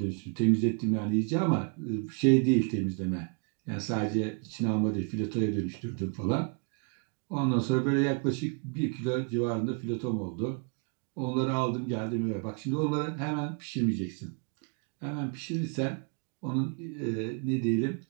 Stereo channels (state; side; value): quieter; left; 38.8 dB